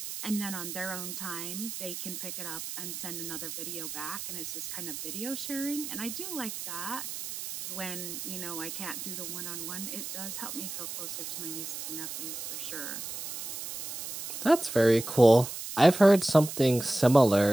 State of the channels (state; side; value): noise; right; hiss, 7 dB below the sound